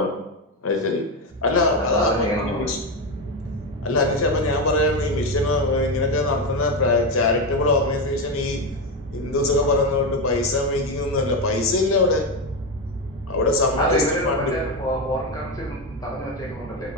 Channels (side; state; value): both; normal; correlation 0.12